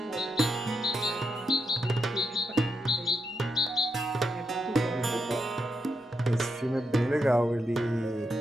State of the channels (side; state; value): both; normal; correlation 0.82